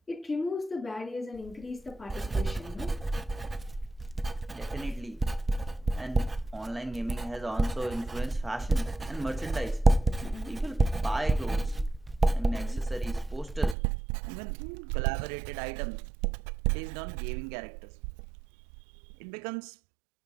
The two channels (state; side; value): drops out; left; at 13.8 s